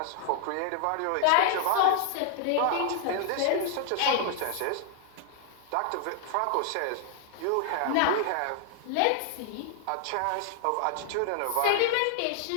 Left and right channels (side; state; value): both; different; correlation 0.00